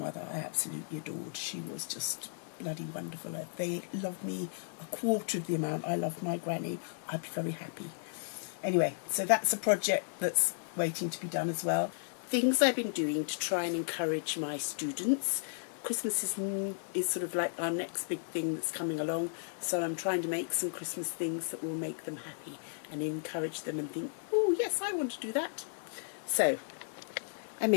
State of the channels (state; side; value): silent; right; digital silence